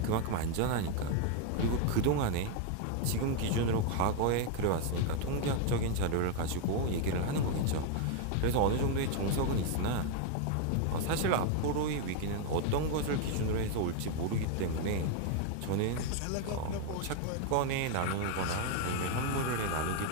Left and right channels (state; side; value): different; both; correlation 0.00